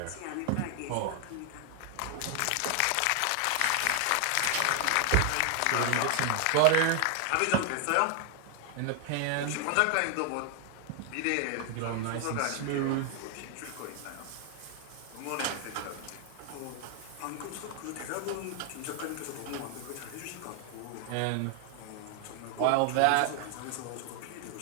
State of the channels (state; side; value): different; both; correlation 0.00